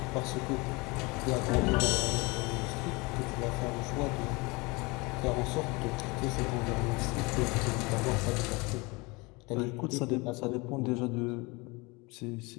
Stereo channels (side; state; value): right; quieter; 25.9 dB